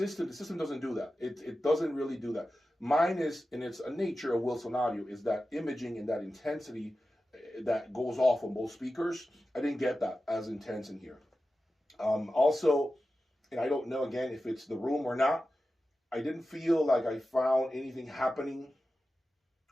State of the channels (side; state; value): both; normal; correlation 0.93